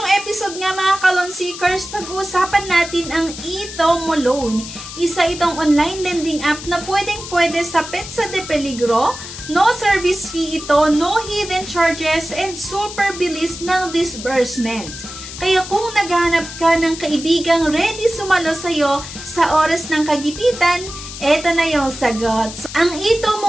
episode nga mga ka-loan seekers, pag-uusapan natin ang eTomo Loan. Isa itong online lending app na pwedeng-pwede sa Petsa de Peligro. No service fee ito, no hidden charges, and super bilis ng disbursement. Kaya kung naghahanap ka ng kaibigang ready sumalo sa'yo sa oras ng kagipitan, eto na yung sagot. So, ang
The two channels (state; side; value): noise; left; hiss, 11 dB below the sound